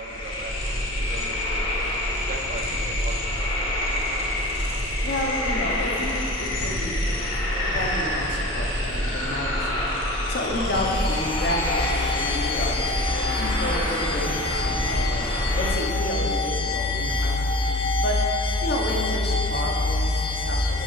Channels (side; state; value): both; normal; correlation 0.39